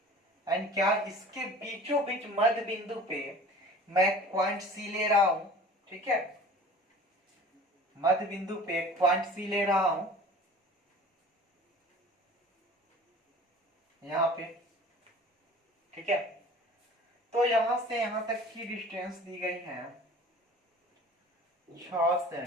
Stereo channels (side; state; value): both; normal; correlation 0.44